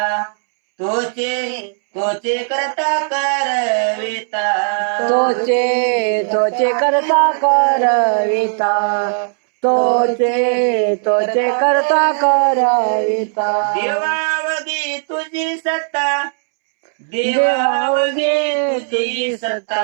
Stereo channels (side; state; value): left; silent; 68 dB below the other